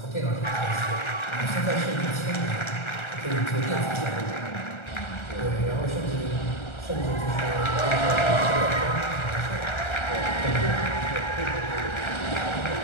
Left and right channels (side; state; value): right; late; 1.4 ms